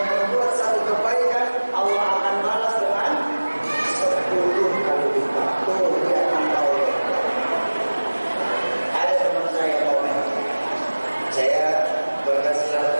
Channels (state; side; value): inverted; both; correlation -1.00